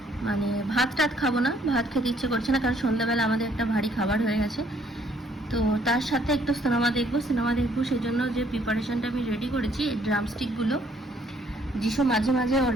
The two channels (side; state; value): both; normal; correlation 0.65